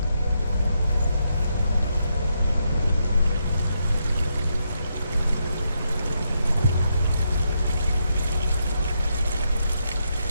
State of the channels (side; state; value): both; inverted; correlation -0.80